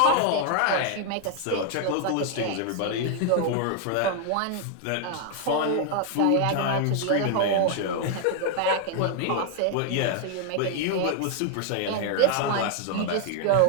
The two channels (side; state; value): both; different; correlation 0.00